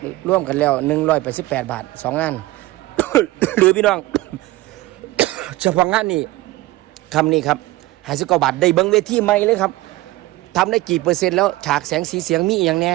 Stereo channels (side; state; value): left; quieter; 18.3 dB